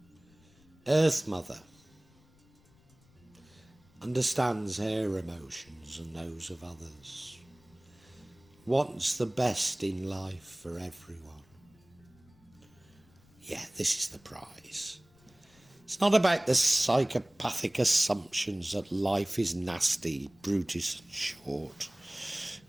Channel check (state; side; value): noise; left; rumble, 29 dB below the sound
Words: Earth Mother understands her emotions and those of others, wants the best in life for everyone. Yeah, this is the prize. It's not about the psychopathic assumptions that life is nasty, brutish and short,